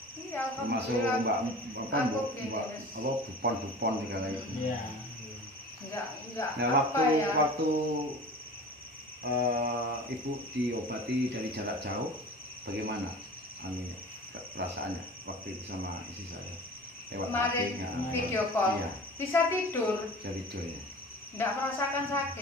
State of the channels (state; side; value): normal; both; correlation 0.39